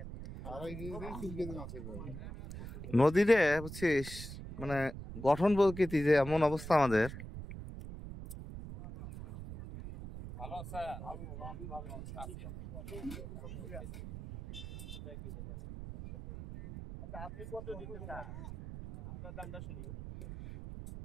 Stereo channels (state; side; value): noise; right; rumble, 10 dB below the sound